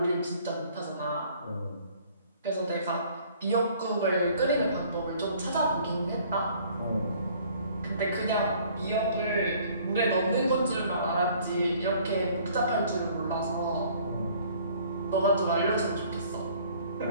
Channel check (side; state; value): both; inverted; correlation -0.56